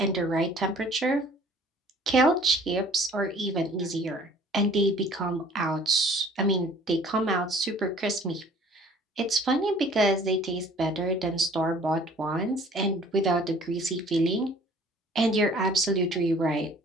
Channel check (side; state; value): both; normal; correlation 0.52